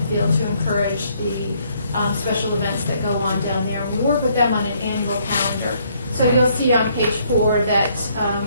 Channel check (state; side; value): inverted; both; correlation -0.68